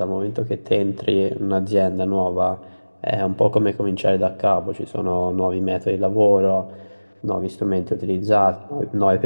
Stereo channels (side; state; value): both; inverted; correlation -1.00